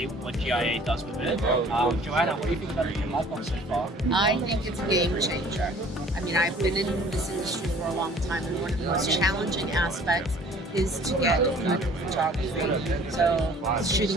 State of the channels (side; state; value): both; normal; correlation 0.52